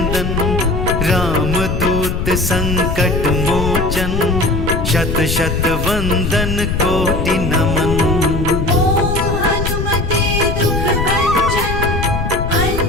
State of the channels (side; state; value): left; noise; rumble, 2 dB below the sound